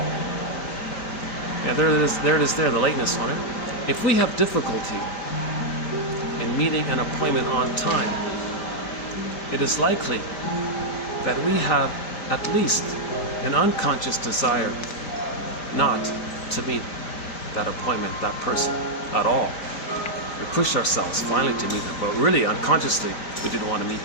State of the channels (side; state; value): right; late; 5.0 ms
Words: And there it is there, the lateness on it. If we have difficulty in meeting an appointment on time, it is likely that we have at least an unconscious desire not to meet that appointment, that person, at all. We pushed ourselves finally to meet them, but really unconsciously we didn't want to meet